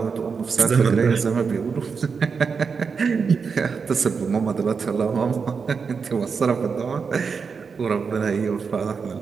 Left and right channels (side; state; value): left; quieter; 5.6 dB